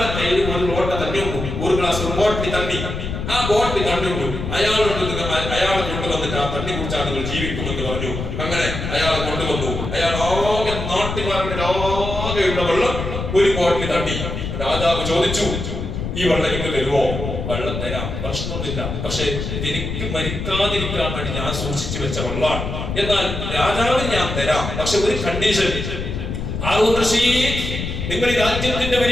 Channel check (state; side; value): noise; left; rumble, 5 dB below the sound